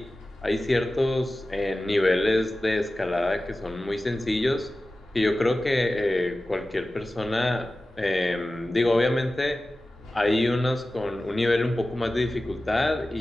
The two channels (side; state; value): both; normal; correlation 0.95